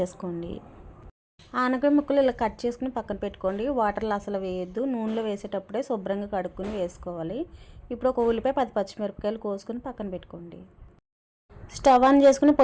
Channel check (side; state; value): both; identical; correlation 1.00